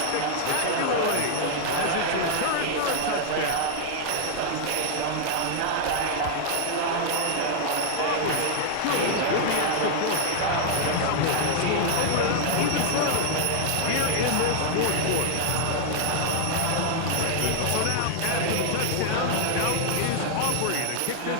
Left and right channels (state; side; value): different; both; correlation 0.00